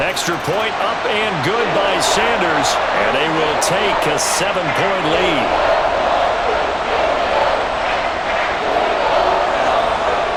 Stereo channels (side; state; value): both; identical; correlation 1.00